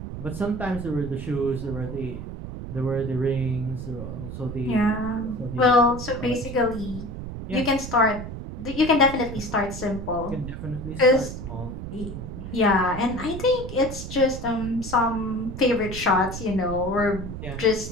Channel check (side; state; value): right; noise; rumble, 8 dB below the sound